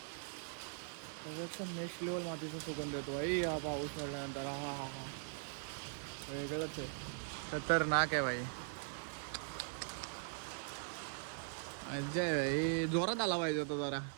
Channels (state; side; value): silent; left; digital silence